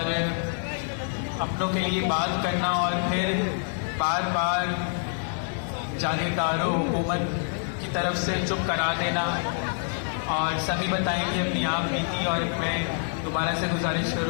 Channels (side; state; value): right; silent; 60 dB below the other